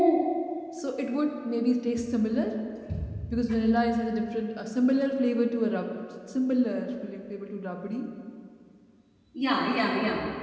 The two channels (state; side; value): identical; both; correlation 1.00